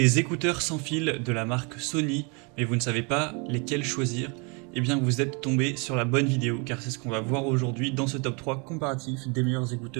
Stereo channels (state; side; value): quieter; left; 32.4 dB